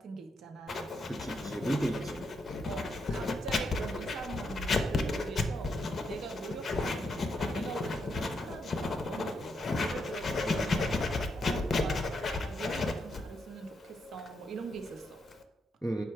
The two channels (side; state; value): both; normal; correlation 0.80